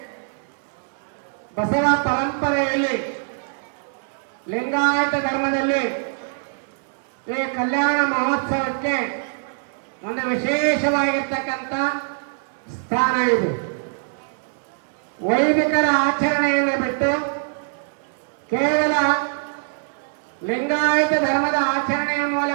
ಬಸವ ಪರಂಪರೆಯಲ್ಲಿ ಲಿಂಗಾಯತ ಧರ್ಮದಲ್ಲಿ ಈ ಕಲ್ಯಾಣ ಮಹೋತ್ಸವಕ್ಕೆ ಒಂದು ವಿಶೇಷವಾಗಿರ್ತಕ್ಕಂಥ ಸ್ಥಾನ ಇದೆ. ವೈದಿಕರ ಆಚರಣೆಯನ್ನು ಬಿಟ್ಟು ಕೇವಲ ಲಿಂಗಾಯತ ಧರ್ಮದ ಆಚರಣೆಯ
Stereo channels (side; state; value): left; silent; digital silence